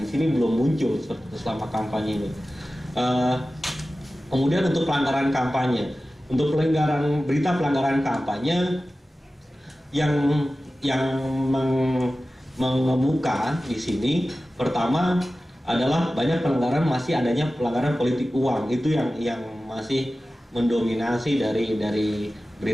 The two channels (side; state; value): both; normal; correlation 0.95